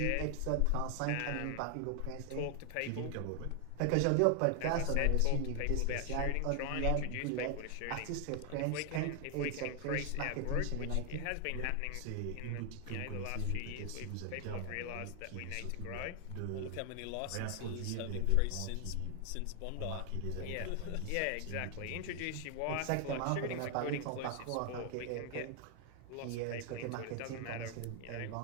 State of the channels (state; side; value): different; both; correlation 0.00